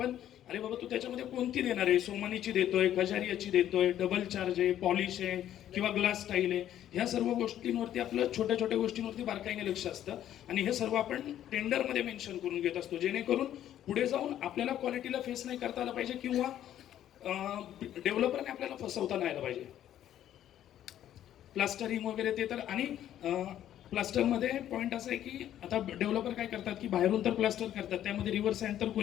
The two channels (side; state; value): right; quieter; 11.5 dB